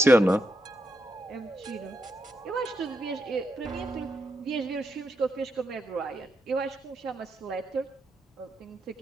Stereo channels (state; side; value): normal; both; correlation 0.82